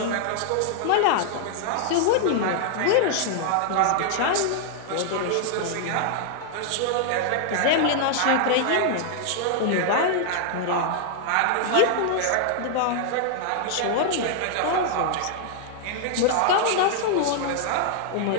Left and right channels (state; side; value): different; both; correlation -0.01